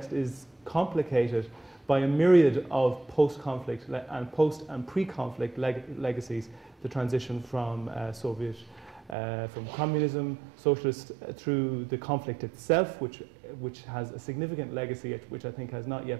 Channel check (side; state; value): left; drops out; at 9.2 s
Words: is complicated by a myriad of post-conflict and post and pre-conflict legacies, the transition from from communism, socialist, through the conflict itself, which has a significant legacy, which I think has not